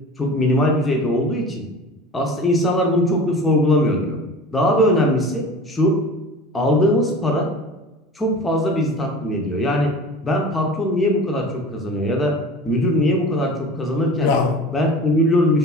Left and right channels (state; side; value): normal; both; correlation 0.38